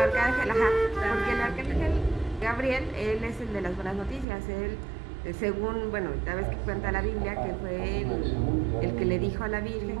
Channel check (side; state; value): left; drops out; at 4.2 s